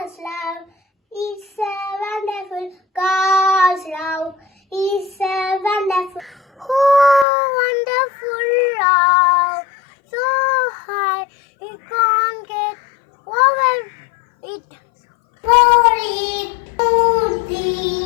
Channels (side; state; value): right; drops out; at 7.2 s